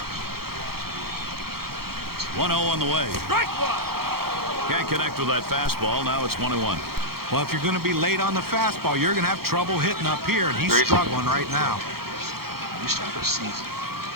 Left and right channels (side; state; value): left; late; 0.94 ms